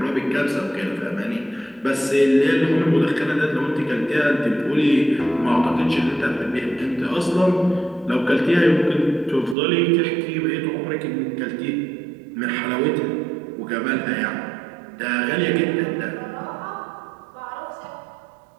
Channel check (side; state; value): left; drops out; at 9.6 s